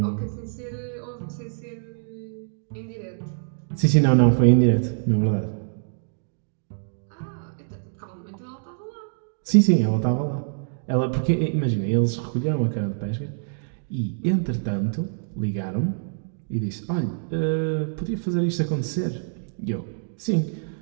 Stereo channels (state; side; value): silent; left; digital silence